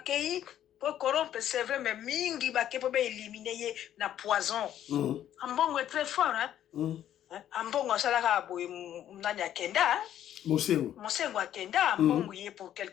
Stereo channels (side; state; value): right; quieter; 11.2 dB